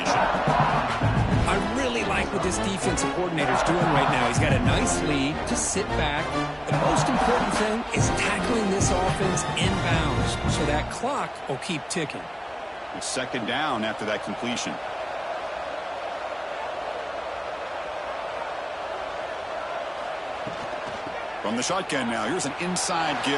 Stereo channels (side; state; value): both; identical; correlation 1.00